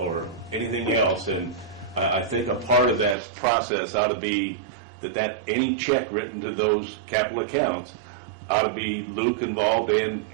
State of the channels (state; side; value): drops out; left; at 3.2 s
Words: anything else. And I think a part of that process ought to be that any check written to those capital accounts ought to be Luke involved